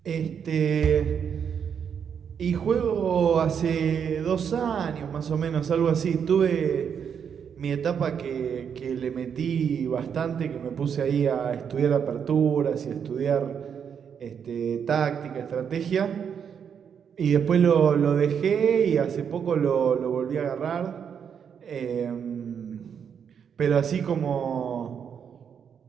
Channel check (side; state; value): left; quieter; 7.5 dB